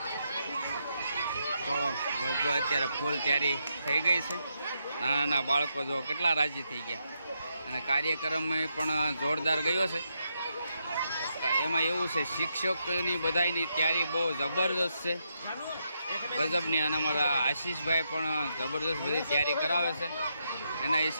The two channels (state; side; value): inverted; both; correlation -0.81